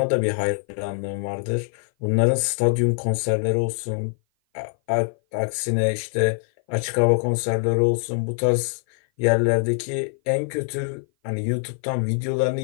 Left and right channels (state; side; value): silent; right; 57 dB below the other